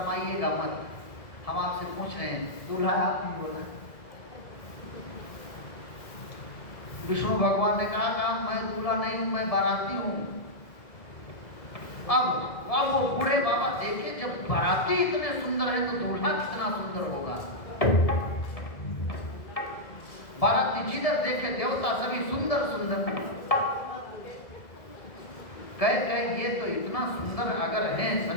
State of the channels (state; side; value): late; right; 1.9 ms